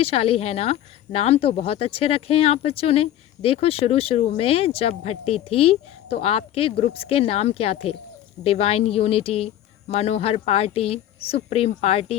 है ना? नाम तो बहुत अच्छे रखे हैं आप बच्चों ने। देखो, शुरू में जब भट्टी थी तो आपके ग्रुप्स के नाम क्या थे? डिवाइन यूनिटी, मनोहर पार्टी, सुप्रीम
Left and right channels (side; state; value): right; quieter; 12.2 dB